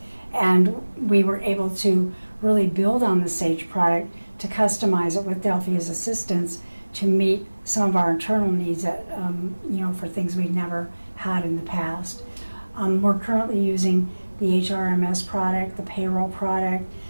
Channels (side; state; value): both; inverted; correlation -1.00